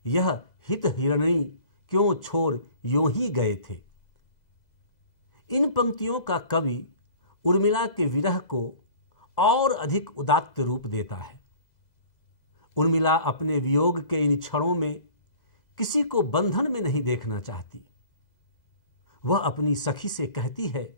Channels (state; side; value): late; right; 2.0 ms